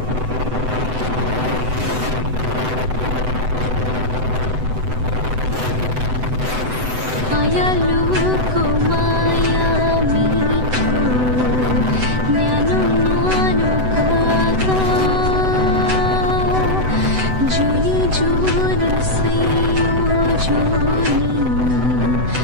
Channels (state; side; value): late; left; 7.9 ms